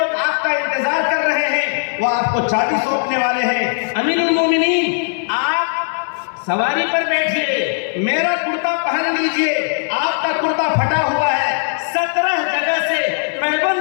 آپ کا انتظار کر رہے ہیں، وہ آپ کو چابی سونپنے والے ہیں۔ امیر المومنین آپ سواری پر بیٹھیے، میرا کرتا پہن لیجئے، آپ کا کرتا پھٹا ہوا ہے، 17 جگہ سے پیبند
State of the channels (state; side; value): silent; right; digital silence